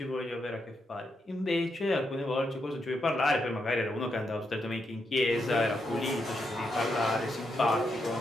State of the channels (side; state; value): both; normal; correlation 0.82